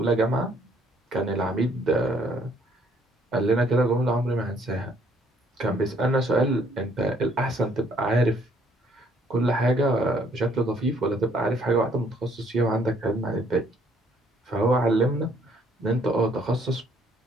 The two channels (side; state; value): both; normal; correlation 0.64